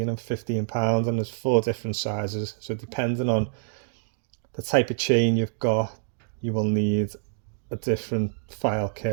and £15, and there's 4 different sizes. So depending on the type of chain you've got, you will need a different file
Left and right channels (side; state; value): left; silent; digital silence